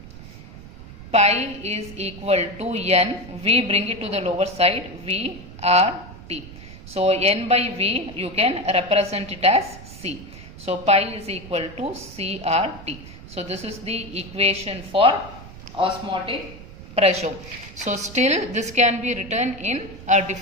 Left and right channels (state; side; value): noise; right; rumble, 16 dB below the sound